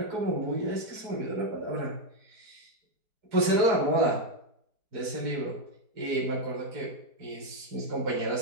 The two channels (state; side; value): late; left; 4.7 ms